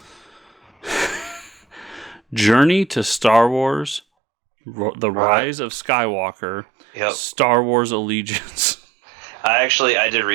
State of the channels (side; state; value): left; drops out; at 4.0 s